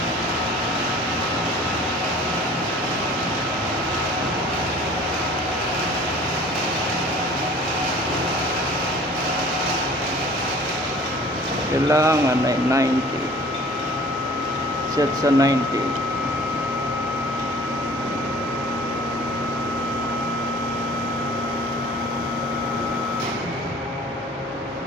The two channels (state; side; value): normal; both; correlation 0.48